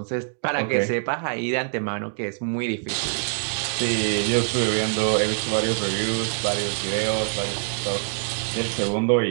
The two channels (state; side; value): silent; left; 62 dB below the other